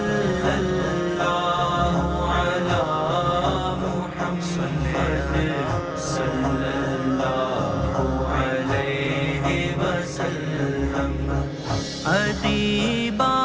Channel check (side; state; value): both; identical; correlation 1.00